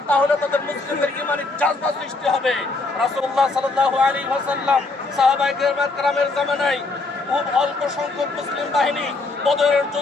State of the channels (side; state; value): right; quieter; 3.5 dB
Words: তাহলে তাদের মুসলিমদের ঈমানি জাযবা সৃষ্টি হবে। রাসূলুল্লাহ সাল্লাল্লাহু আলাইহি ওয়াসাল্লাম সাহাবায়ে কেরামের জামানায় খুব অল্প সংখ্যক মুসলিম বাহিনী বদরের